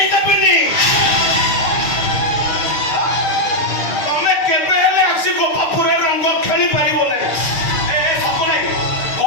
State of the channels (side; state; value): right; late; 6.6 ms